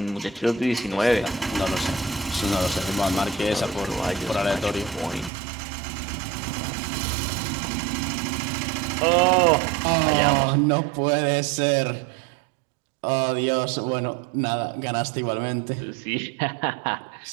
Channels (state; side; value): drops out; left; at 5.3 s